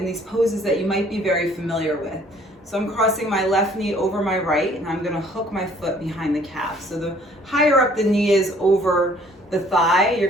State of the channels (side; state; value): both; normal; correlation 0.58